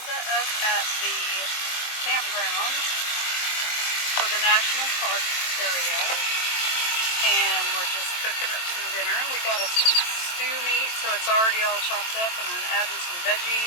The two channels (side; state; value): right; late; 23 ms